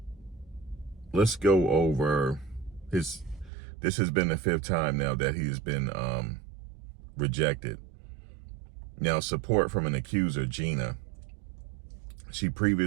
let's go over this has been the 5th time now that he's been rejected. Now, support from an accuser, Gina. She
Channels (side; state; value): left; drops out; at 3.5 s